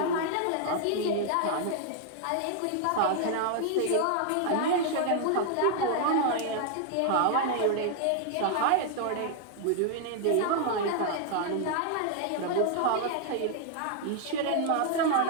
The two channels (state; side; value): different; both; correlation 0.00